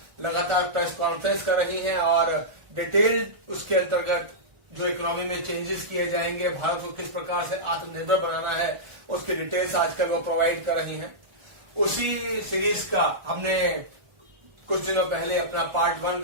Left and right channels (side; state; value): left; late; 1.4 ms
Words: लगातार प्रेस कॉन्फ्रेंस कर रही हैं और डिटेल उसके अंतर्गत जो इकोनॉमी में चेंजेस किए जाएंगे, भारत को किस प्रकार से आत्मनिर्भर बनाना है, उसकी डिटेल्स आजकल वो प्रोवाइड कर रही हैं। उसी सीरीज का हमने कुछ दिनों पहले अपना पार्ट 1